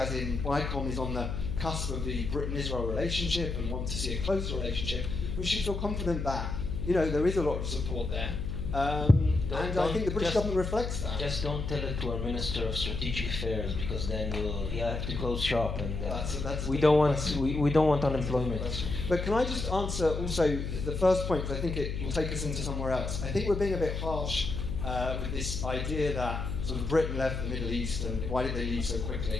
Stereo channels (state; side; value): noise; left; hum, 3 dB below the sound